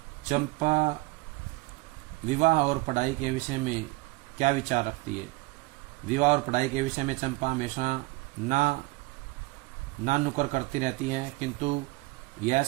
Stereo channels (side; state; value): left; quieter; 23.4 dB